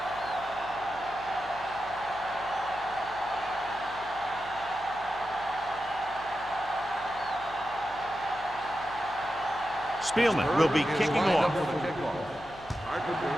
Spielman will be kicking off.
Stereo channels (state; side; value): noise; left; hum, 19 dB below the sound